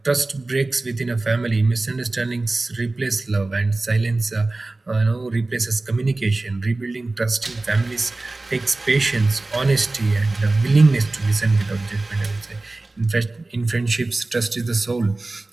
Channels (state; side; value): quieter; left; 3.1 dB